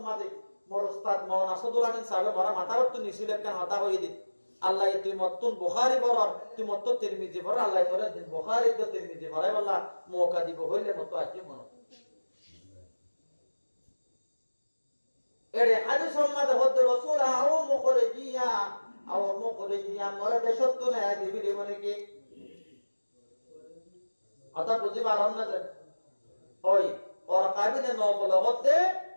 মাদে মোর উস্তাদ মাওলানা আসাদুল আমিন সাহেব মারা মাথার তো নিছিল কেন হতা হই দিন আল্লাহ তুই মতুন বুখারী পড়র তুই মত তিরমিজি পড় আল্লাহ তোরে দিন বুখারী তো তিরমিজি পড়াই বল্লা মৌকা দিব হইলে মত আসি মন এরে হাদিস সম্মাদ হদ রাসূল আও মুখরিজিয়া মরে দেশত না দিবি মানে কি আতা বুঝি পারন না যে ওই ওর কাবিনে নবল হতে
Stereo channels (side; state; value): both; inverted; correlation -1.00